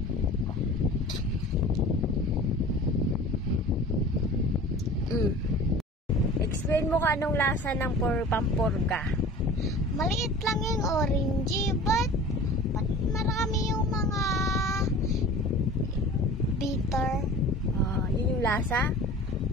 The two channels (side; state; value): both; normal; correlation 0.41